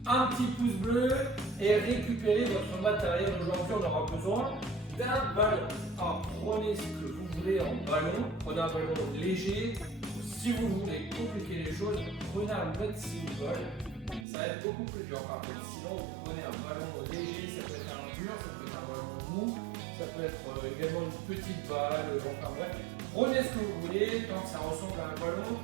Un petit pouce bleu et récupérez votre matériel. Aujourd'hui, on aura besoin d'un ballon. Alors, prenez ce que vous voulez en ballon. Prenez un ballon léger. Si vous voulez compliquer les choses, prenez un medicine ball. Ça va être beaucoup plus dur. Par contre, sinon, vous prenez un ballon léger. Ça peut être un dur, ça peut être un ballon mou. Ça peut être également une petite balle. Enfin bref, prenez ce que vous voulez. Tant que ça ressemble à un ballon,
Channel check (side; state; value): left; drops out; at 14.2 s